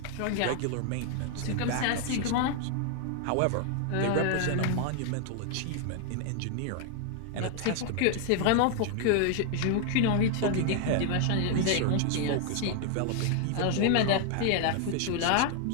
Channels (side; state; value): both; different; correlation 0.00